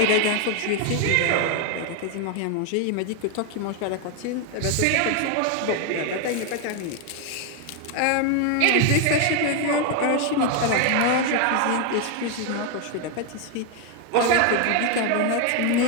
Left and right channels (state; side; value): different; both; correlation 0.01